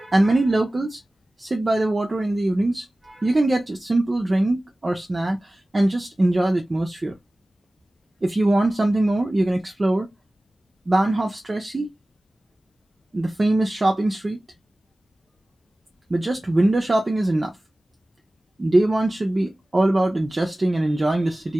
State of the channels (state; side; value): normal; both; correlation 0.97